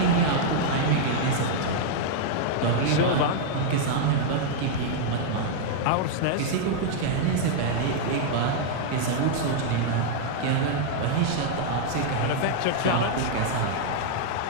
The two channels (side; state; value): both; different; correlation -0.01